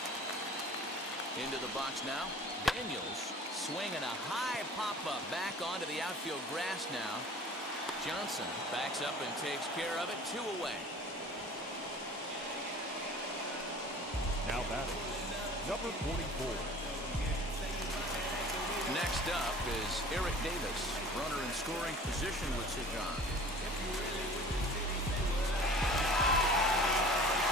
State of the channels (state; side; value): normal; both; correlation 0.44